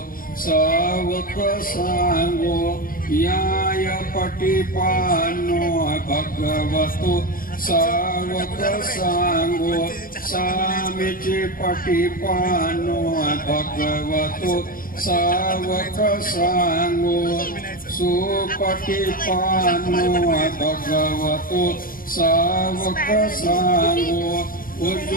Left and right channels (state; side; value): late; right; 0.41 ms